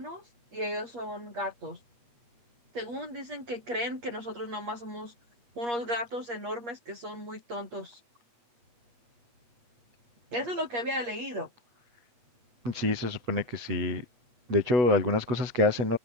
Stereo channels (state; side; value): late; left; 8.4 ms